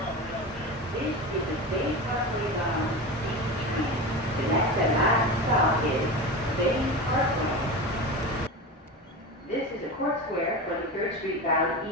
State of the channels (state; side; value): normal; both; correlation 0.25